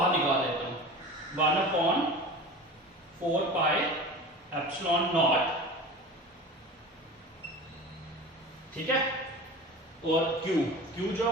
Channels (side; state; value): both; normal; correlation 0.35